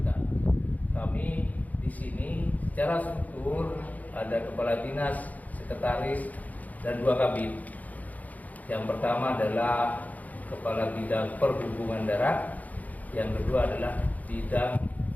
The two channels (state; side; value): late; right; 0.077 ms